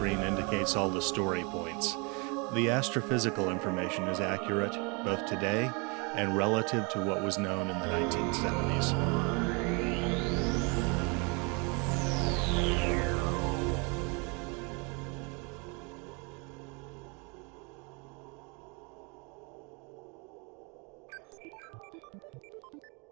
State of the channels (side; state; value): left; quieter; 31.2 dB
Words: indicates all the story points. The astrophysical information is accurate, both today and relative to what was known in the 1970s.